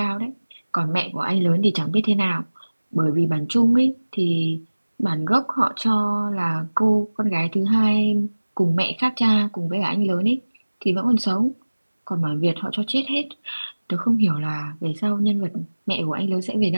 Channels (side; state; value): both; inverted; correlation -1.00